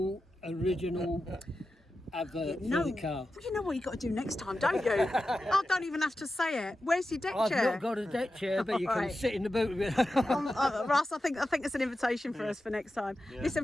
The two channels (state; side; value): normal; both; correlation 0.92